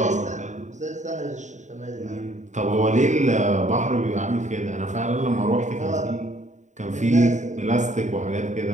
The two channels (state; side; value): late; left; 0.35 ms